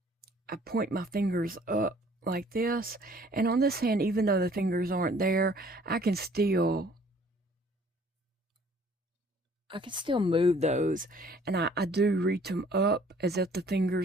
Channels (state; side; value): normal; both; correlation 0.56